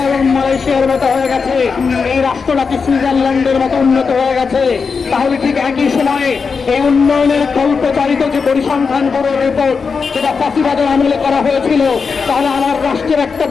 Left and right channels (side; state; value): right; quieter; 5.3 dB